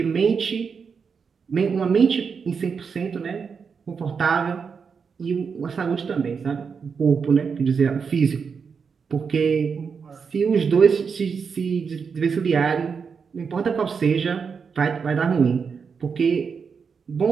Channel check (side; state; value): left; quieter; 5.9 dB